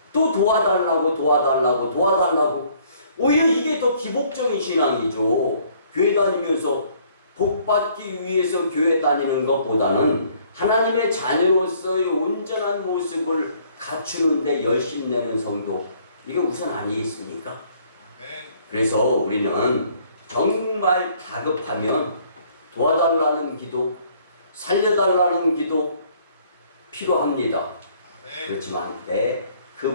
또 도와달라고 오히려 이게 더 기복적인 신앙이죠. 교회 다니면서 복 받기 위해서 교회 다니는 것보다는 하나님의 자녀로서의 온전한 모습을 갖추는데 열심 내는 성도, 이게 우선 아니겠습니까? 그래서 우리는 정말 다급하면 도와달라는 기도, 살려달라는 기도 필요합니다. 그렇지만 그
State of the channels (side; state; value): both; inverted; correlation -0.62